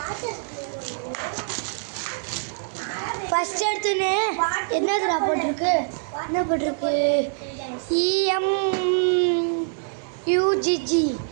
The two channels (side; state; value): left; silent; 62 dB below the other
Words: ஃபஸ்ட் எடுத்துன்னு என்னதுடா போட்டிருக்கு, என்ன போட்டிருக்கு, EMUGG